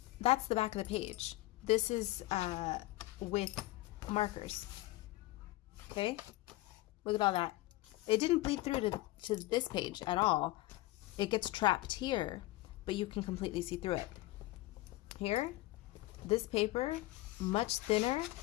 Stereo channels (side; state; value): right; quieter; 18.5 dB